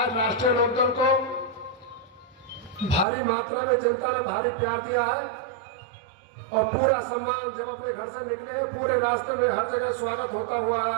राष्ट्रीय लोकदल को भारी मात्रा में जनता ने भारी प्यार दिया है और पूरा सम्मान। जब अपने घर से निकले पूरे रास्ते में हर जगह स्वागत होता हुआ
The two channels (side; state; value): left; drops out; at 3.1 s